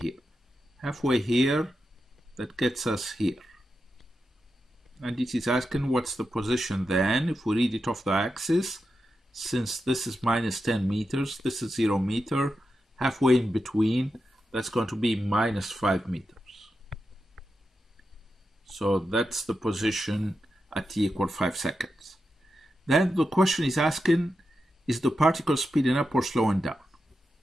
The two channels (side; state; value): both; normal; correlation 0.88